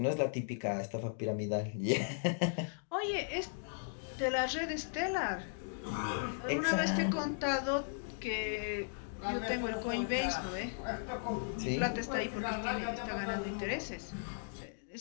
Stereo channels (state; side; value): silent; right; digital silence